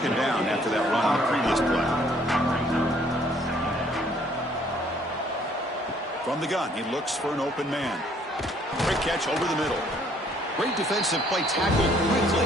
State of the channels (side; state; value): both; normal; correlation 0.62